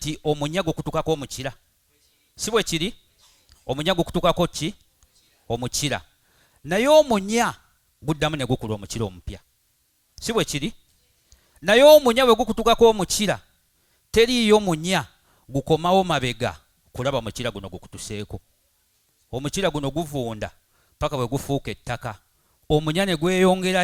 omunyago kutukako omukira? Si bwe kiri? Omunyago kutukako ki? Omukira. Naye omunya guddamu ne gukula omukira omupya. Si bwe kiri? Naye omunya bwe gukutukako omukira, teriiyo munya gukomawo mabega kulaba mukira guno gukutuseeko. Omukira guno guvunda paka bwe gufuuka ettaka. Omunya ne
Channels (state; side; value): identical; both; correlation 1.00